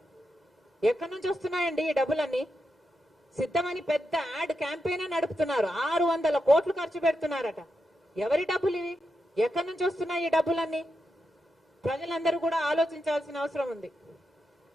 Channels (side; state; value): both; normal; correlation 0.86